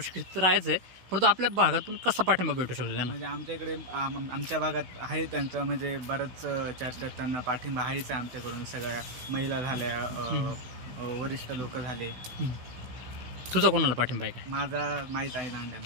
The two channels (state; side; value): late; left; 16 ms